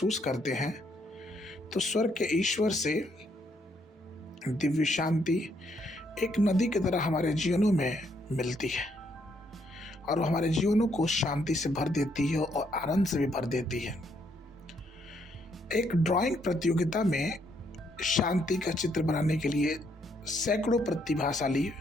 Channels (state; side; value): normal; both; correlation 0.73